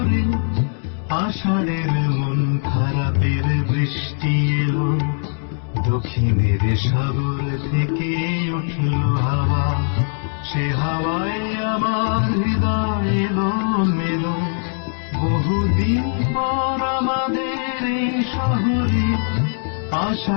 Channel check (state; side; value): silent; right; 65 dB below the other